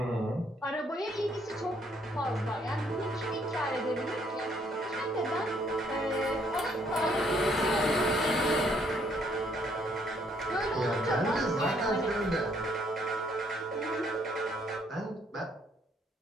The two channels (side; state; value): both; normal; correlation 0.68